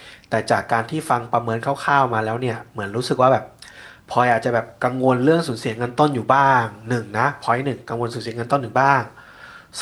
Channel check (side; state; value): both; identical; correlation 1.00